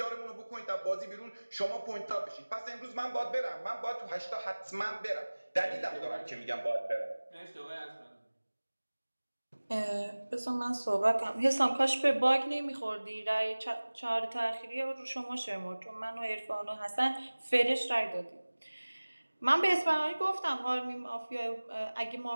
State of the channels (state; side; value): inverted; both; correlation -1.00